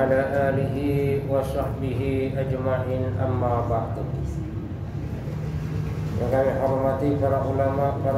alihi wa sahbihi ajma'in, amma ba'du. Yang kami hormati para ulama,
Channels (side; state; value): both; identical; correlation 1.00